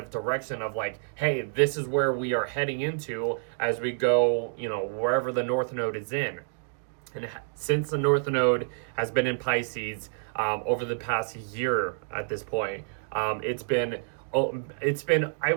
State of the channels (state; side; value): silent; left; digital silence